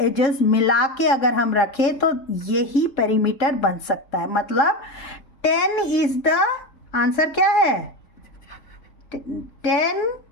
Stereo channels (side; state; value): right; late; 3.7 ms